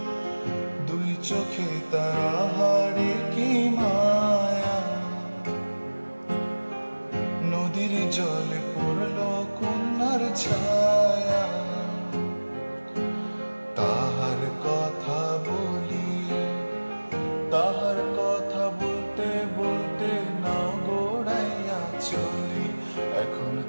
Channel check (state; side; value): inverted; both; correlation -1.00